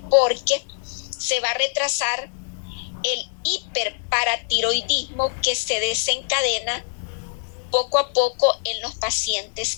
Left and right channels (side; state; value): right; silent; digital silence